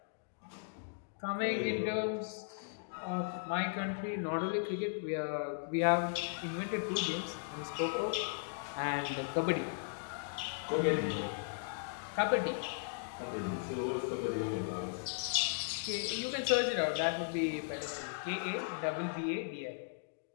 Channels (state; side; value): silent; right; digital silence